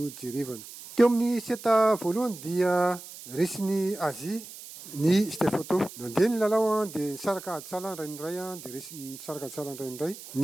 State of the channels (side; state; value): right; noise; hiss, 15 dB below the sound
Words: jerevana. Teo amin'ny seta voalohany dia resin'ny Azia ny Stefotô. Nandeha ny lalao dia nisaraka aditsala ray indray dia resy nisaraka aditsala ray indray